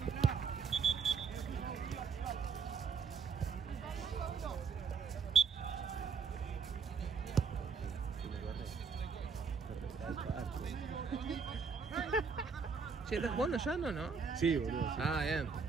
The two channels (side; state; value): left; quieter; 5.6 dB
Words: Che, ¿estás jugando ya no? Sí, boludo. Sí. Ah, bien.